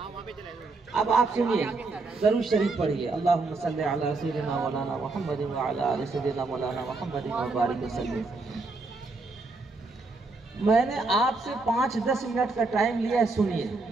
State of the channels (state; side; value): quieter; left; 3.6 dB